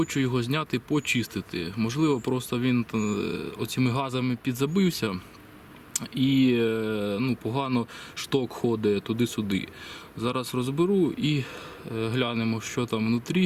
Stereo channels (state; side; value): identical; both; correlation 1.00